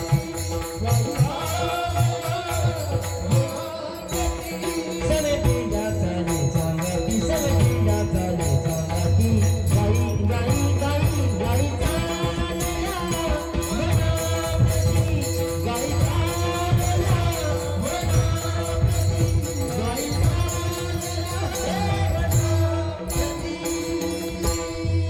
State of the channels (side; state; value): both; identical; correlation 1.00